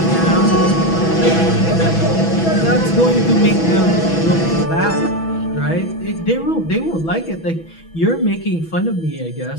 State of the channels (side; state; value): right; late; 6.1 ms